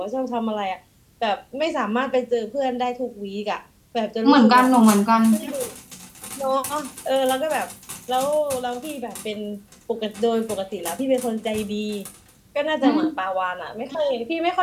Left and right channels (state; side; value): identical; both; correlation 1.00